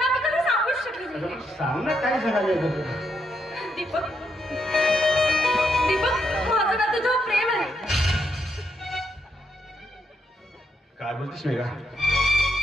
मी कधी सांगूच शकले नाही. सांग ना काय सांगायचं. दीपक, दीपक, माझं ना तुझ्यावर प्रेम आहे. काय बोलतेस मेघा?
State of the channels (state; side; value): normal; both; correlation 0.79